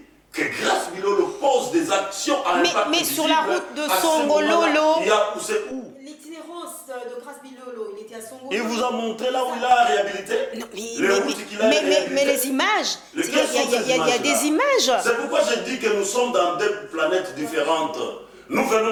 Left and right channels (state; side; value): identical; both; correlation 1.00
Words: que Grace Bilolo pose des actions à impact visible... Mais sur la route de Songololo... C'est où? L'itinérance de Grace Bilolo, il était à Songololo. Il vous a montré là où il a réhabilité? Non, mais les images, il y a des images. C'est pourquoi je dis que nous sommes dans deux planètes différentes. Nous